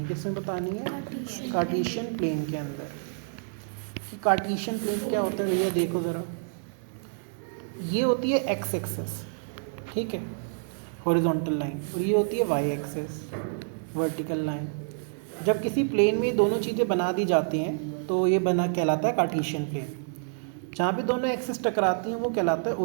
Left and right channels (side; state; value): left; silent; digital silence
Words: किसमें बतानी है? कार्टेशियन प्लेन के अंदर। कार्टेशियन प्लेन क्या होता है भैया, देखो ज़रा, ये होती है एक्स एक्सिस, ठीक है, हॉरिजॉन्टल लाइन, और ये होती है वाई एक्सिस, वर्टिकल लाइन। जब किसी प्लेन में दोनों चीज़ें बना दी जाती हैं तो ये बना कहलाता है कार्टेशियन प्लेन। जहाँ पे दोनों एक्सिस टकराती हैं वो कहलाता है